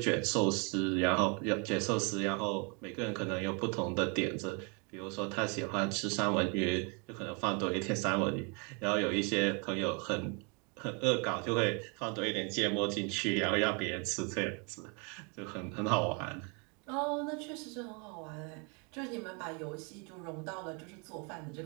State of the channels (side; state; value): left; quieter; 33.8 dB